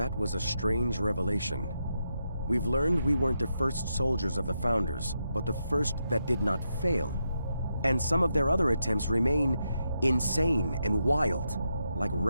was a strange revelation. We've learned we weren't the first soldiers of the Founders, but the first that did not fail. And some of their other attempts remain insane and wild, like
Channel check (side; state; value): both; inverted; correlation -0.84